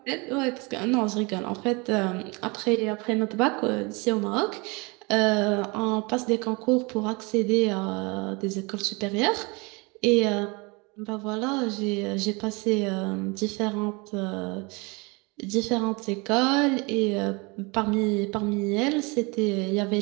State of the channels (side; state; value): left; quieter; 27.8 dB